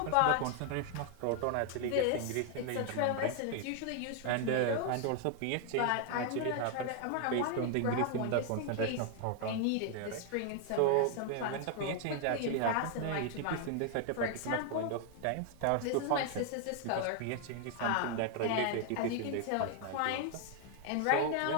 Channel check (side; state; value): both; different; correlation 0.00